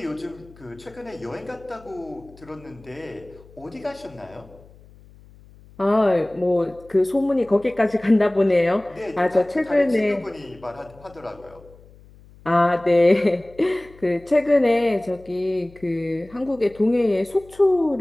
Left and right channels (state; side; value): noise; left; hum, 24 dB below the sound